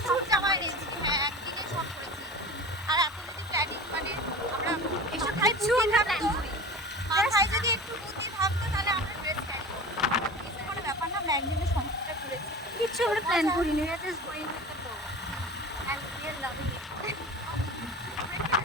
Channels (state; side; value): normal; both; correlation 0.35